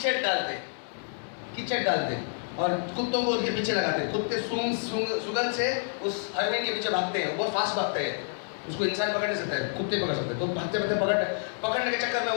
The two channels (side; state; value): right; silent; 59 dB below the other